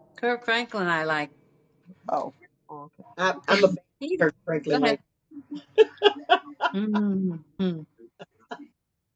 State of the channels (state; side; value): identical; both; correlation 1.00